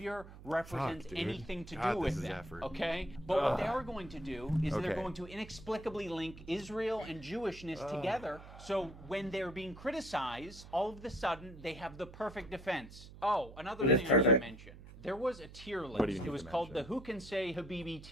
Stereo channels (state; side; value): noise; right; hum, 16 dB below the sound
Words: represents anything to do with them, okay? But what they are going to do is they're going to inexplicably link Israel and Jewishness together, so when they're being criticized, all of a sudden, they have the perfect defense. Oh, another thing I should mention. There was a tier list. It was called the Who Can Say Habibi